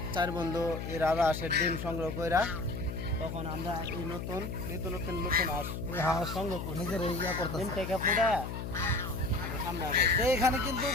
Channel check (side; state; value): left; noise; hum, 6 dB below the sound